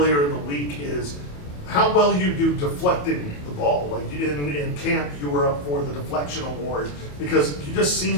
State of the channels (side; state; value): right; late; 28 ms